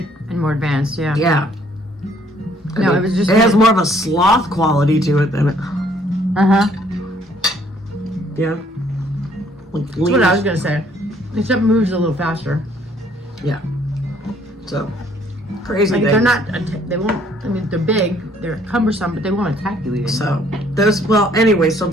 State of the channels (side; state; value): both; normal; correlation 0.63